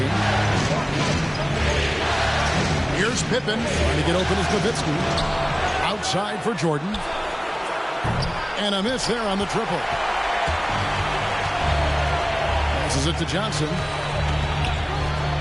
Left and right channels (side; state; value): both; identical; correlation 1.00